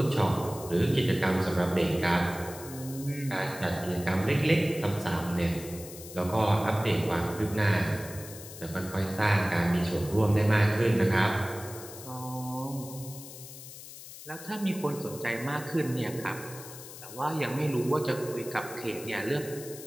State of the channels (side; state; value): left; noise; hiss, 14 dB below the sound